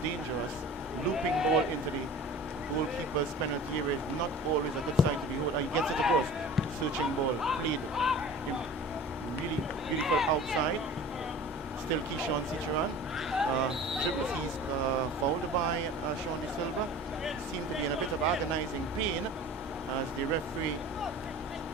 dangerous. Looping ball into the goalkeeper's penalty area is not always a good sign to behold. He gets it across. Searching ball played really beautiful outside. Still Keyshawn Seacharan. Dribbles, he's fouled by Sean De Silva. Seemed to be in a bit of agonizing pain as the referee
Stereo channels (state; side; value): normal; both; correlation 0.40